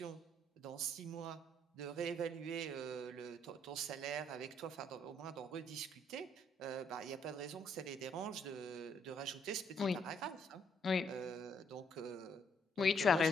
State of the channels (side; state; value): both; normal; correlation 0.70